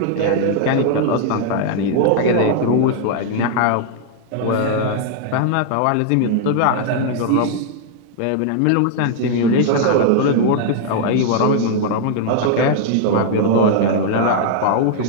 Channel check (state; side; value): different; both; correlation 0.00